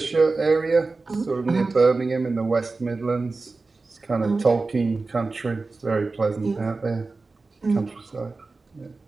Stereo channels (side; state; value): left; quieter; 3.7 dB